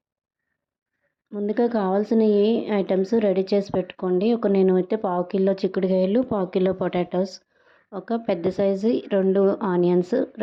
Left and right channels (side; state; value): both; identical; correlation 1.00